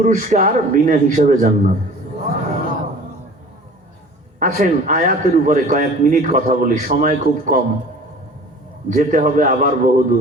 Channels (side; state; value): both; normal; correlation 0.45